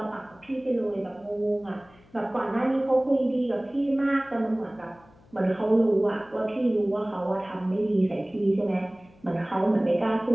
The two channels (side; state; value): left; noise; hum, 28 dB below the sound